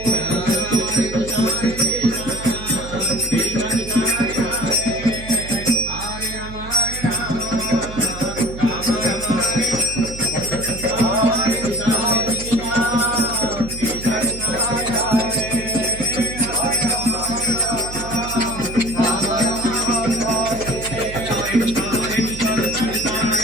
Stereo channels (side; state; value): right; noise; hum, 12 dB below the sound